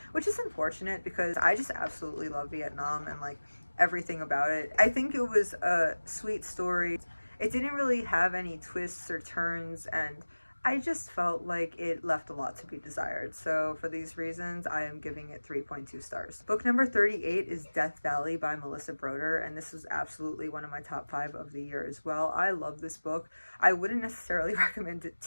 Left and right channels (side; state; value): both; inverted; correlation -1.00